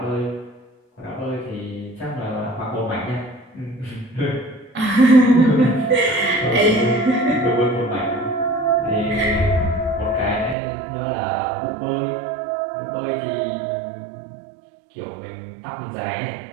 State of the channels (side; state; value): left; drops out; at 10.6 s